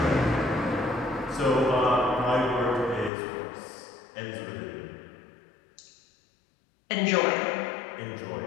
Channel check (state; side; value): drops out; right; at 3.1 s